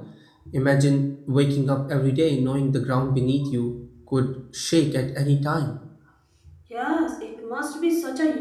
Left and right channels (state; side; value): identical; both; correlation 1.00